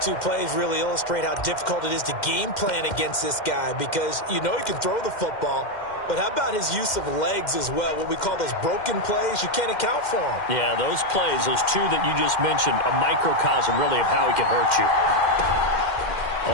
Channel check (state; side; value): late; right; 2.1 ms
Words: two plays really illustrate how difficult it is to game plan against this guy, because you know he can throw the football, but how about his use of legs as well? What we call those broken plays, you can't account for them. Yeah, those plays, those two that you just mentioned, a microcosm really of how he can hurt you.